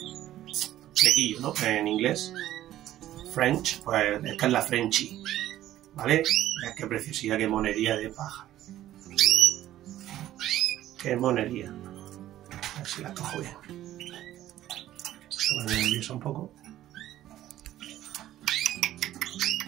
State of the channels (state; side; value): quieter; left; 13.4 dB